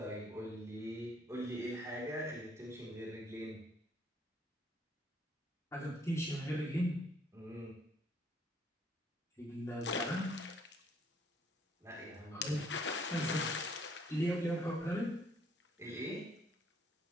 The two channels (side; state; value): both; normal; correlation 0.65